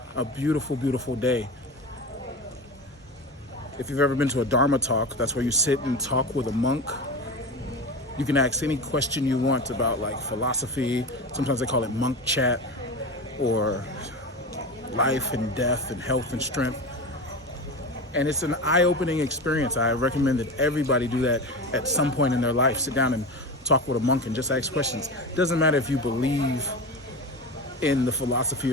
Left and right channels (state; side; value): normal; both; correlation 0.26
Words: a beautiful, beautiful day. If you've ever been to a Dharma talk, that's where you sit and talk with a monk. You can ask any question you want about like philosophy. Sometimes they call it monk chat, or life and death and health and strength. And it's an eye-opening experience. I recommend that everybody do that at some point in their life. Sit down and talk with a monk and just ask questions. It doesn't matter if you believe in the philosophy